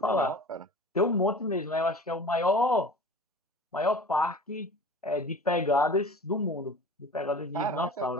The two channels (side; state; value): both; normal; correlation 0.40